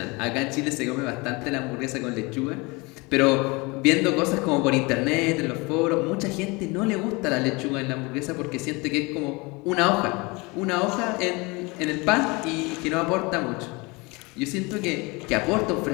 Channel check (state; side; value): quieter; right; 26.0 dB